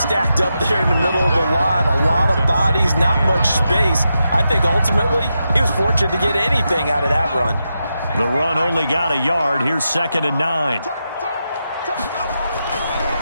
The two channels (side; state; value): both; inverted; correlation -0.87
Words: up there in the middle of the line. A lot of bodies, not much space. I think ultimately he was fortunate to get anything out of that run. The run only got a yard. Here's 2nd and 9.